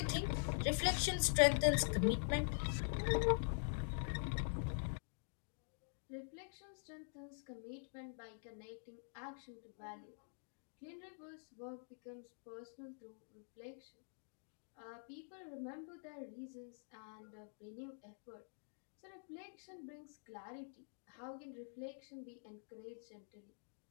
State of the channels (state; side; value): silent; right; digital silence